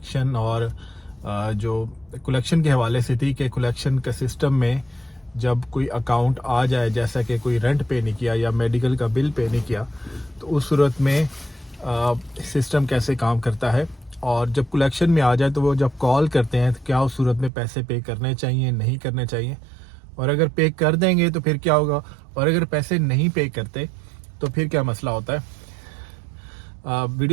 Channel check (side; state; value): left; drops out; at 17.5 s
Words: और जो कलेक्शन के हवाले से थी कि कलेक्शन के सिस्टम में जब कोई अकाउंट आ जाए, जैसा कि कोई रेंट पे नहीं किया या मेडिकल का बिल पे नहीं किया, तो उस सूरत में सिस्टम कैसे काम करता है। और जब कलेक्शन में आ जाए तो वो जब कॉल करते हैं तो क्या उस सूरत में पैसे पे करने चाहिए, नहीं करने चाहिए, और अगर पे कर देंगे तो फिर क्या होगा, और अगर पैसे नहीं पे करते तो फिर क्या मसला होता है।